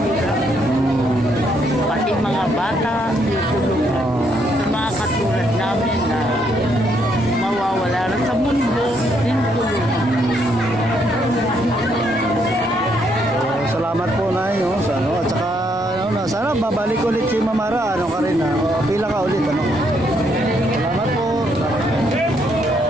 Pati mga bata, tutulungan. Sa mga katulad namin na mawawala na sa mundo, tinutulungan. Salamat po na yun. At saka, sana babalik ulit si Mamara. Ano ka rin, pila ka ulit. Salamat po.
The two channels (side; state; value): both; normal; correlation 0.73